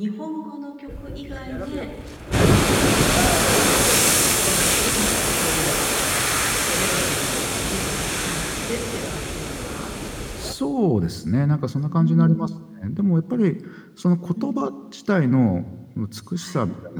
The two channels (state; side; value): identical; both; correlation 1.00